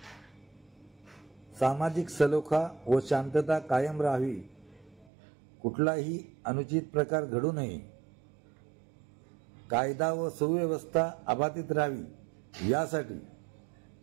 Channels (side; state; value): left; drops out; at 5.1 s